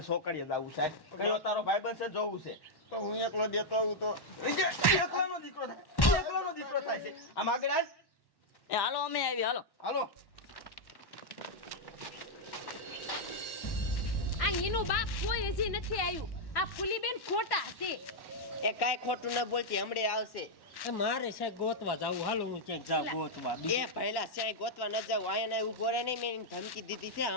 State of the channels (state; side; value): late; right; 1.1 ms